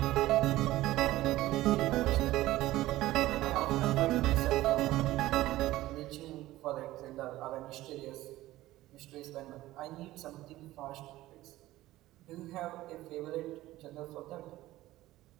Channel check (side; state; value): left; quieter; 16.4 dB